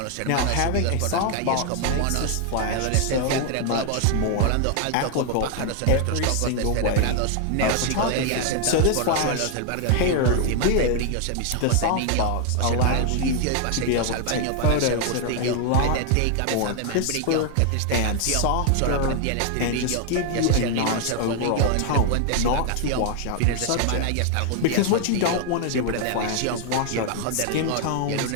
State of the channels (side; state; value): both; different; correlation 0.00